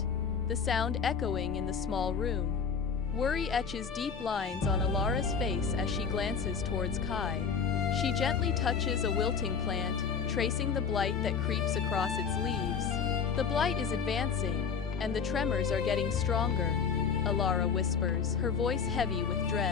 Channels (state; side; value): quieter; right; 6.3 dB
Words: the sound echoing in the small room. Worry etches deep lines on Alara's face as she glances towards Kai. She gently touches a wilting plant, tracing the blight that creeps across its leaves. The blight is advancing, and the tremors are getting stronger, Alara whispers, her voice heavy with